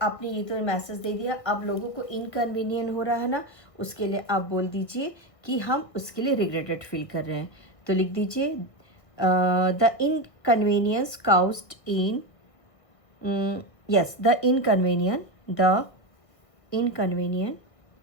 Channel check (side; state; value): right; late; 1.4 ms